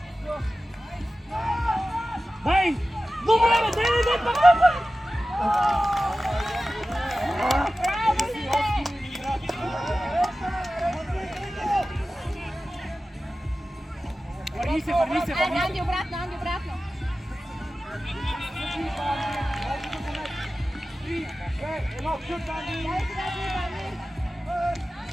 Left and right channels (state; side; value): normal; both; correlation 0.95